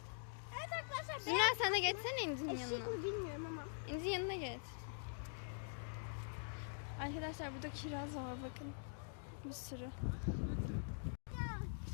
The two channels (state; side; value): silent; right; digital silence